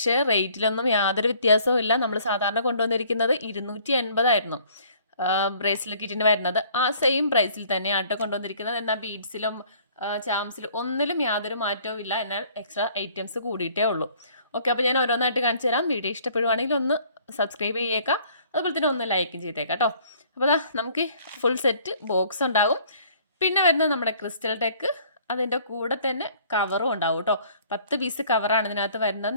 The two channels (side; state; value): both; inverted; correlation -0.58